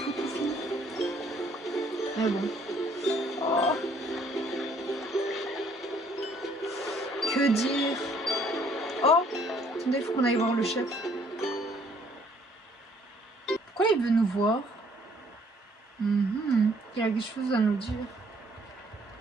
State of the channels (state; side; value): normal; both; correlation 0.63